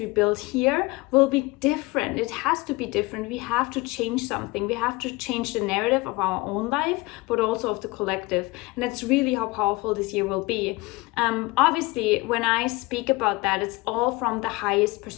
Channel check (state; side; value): quieter; right; 23.3 dB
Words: build here will be different. It has to be different. We have to change something. We have to change the narrative of our own life, but also of the collective. And that's really how powerful this year will be. Obviously, when I speak about that, it's all from the highest